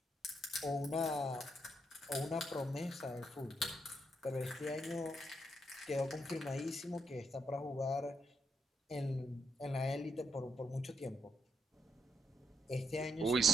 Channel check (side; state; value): both; normal; correlation 0.79